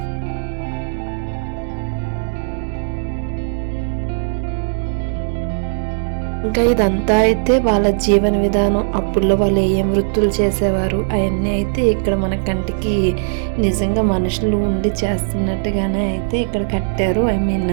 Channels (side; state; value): left; silent; digital silence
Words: ఇంకా ఇదంతా అయితే వాళ్ళ జీవన విధానం, అప్పుల్లో వాళ్ళు ఏం వృత్తులు చేసేవారు అవన్నీ అయితే ఇక్కడ మన కంటికి నిజంగా మనుషులు ఉండి చేస్తున్నట్టుగానే అయితే ఇక్కడ కట్టారు.